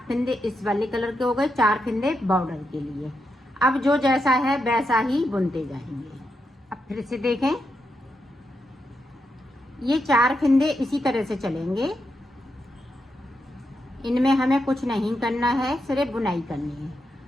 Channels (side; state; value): both; normal; correlation 0.84